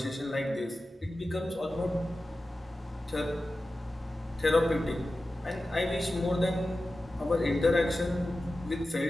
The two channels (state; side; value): normal; both; correlation 0.94